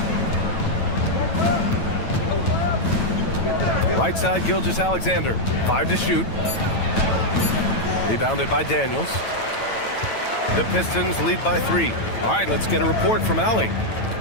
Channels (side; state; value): right; late; 9.0 ms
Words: Right side, Gilgeous-Alexander. 5 to shoot. Rebounded by Daniels. The Pistons lead by 3. All right, let's get a report from Allie.